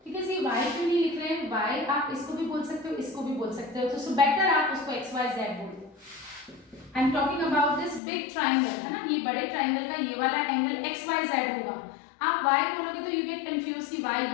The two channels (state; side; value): drops out; right; at 8.0 s